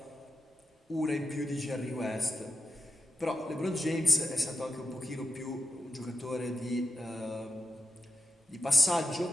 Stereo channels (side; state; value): both; normal; correlation 0.88